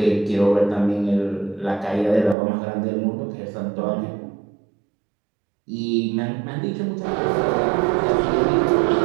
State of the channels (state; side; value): drops out; left; at 2.4 s